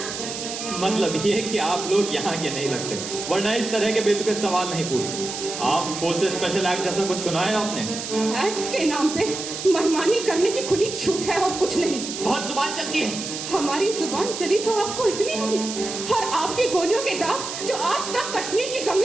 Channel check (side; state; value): right; noise; hiss, 7 dB below the sound